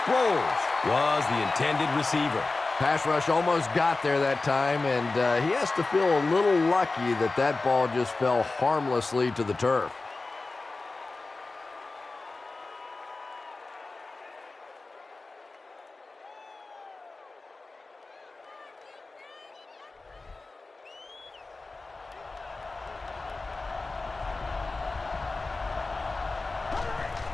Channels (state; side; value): quieter; right; 3.5 dB